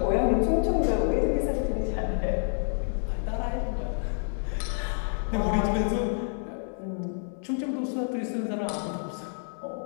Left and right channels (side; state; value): right; silent; digital silence